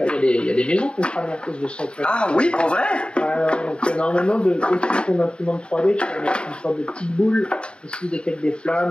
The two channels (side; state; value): right; late; 0.054 ms